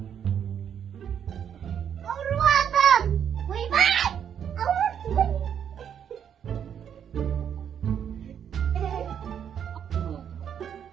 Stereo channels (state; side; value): quieter; left; 8.6 dB